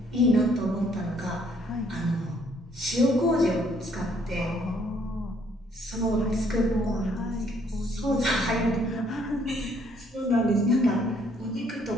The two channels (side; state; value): both; normal; correlation 0.65